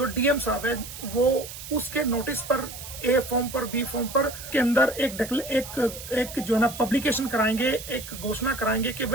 डीएम साहब है वो उसके नोटिस पर ए फॉर्म पर बी फॉर्म पर के अंदर एक जो है ना पब्लिकेशन कराएंगे, एक घोषणा कराएंगे कि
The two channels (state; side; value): noise; right; hiss, 12 dB below the sound